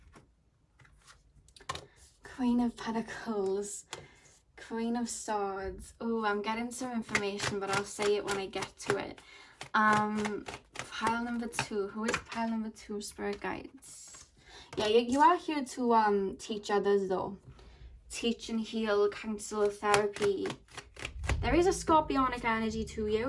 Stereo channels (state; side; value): identical; both; correlation 1.00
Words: Queen of Pentacles, Queen of Swords. Oh, I'm getting some information, but I'll say it when I get to it. Pile number 2. Who is pile number 2, Spirit Guides? Yeah, you are here to teach others though. Teach and heal, counsel, therapy. There is a Scorpionic energy to